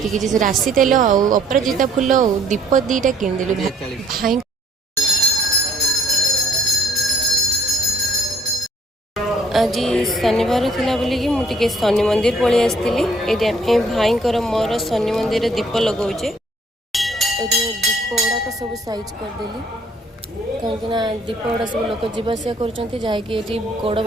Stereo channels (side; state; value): both; normal; correlation 0.62